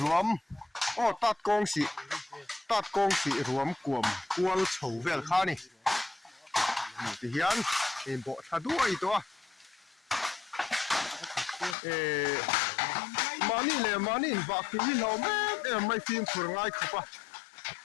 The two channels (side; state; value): right; drops out; at 11.8 s